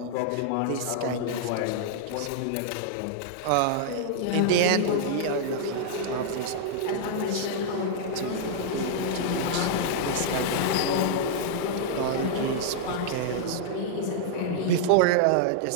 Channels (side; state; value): both; different; correlation -0.01